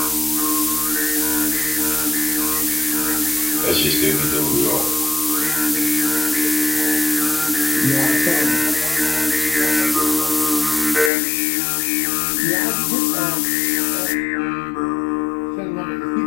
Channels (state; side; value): drops out; right; at 11.1 s